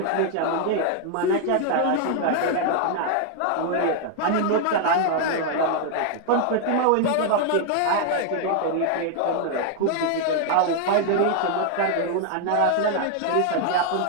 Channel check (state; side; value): different; both; correlation 0.00